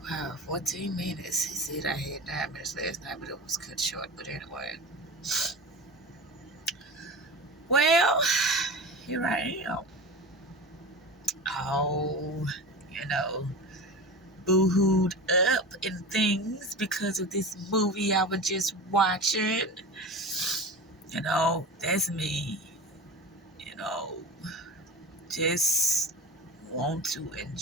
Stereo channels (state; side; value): normal; both; correlation 0.30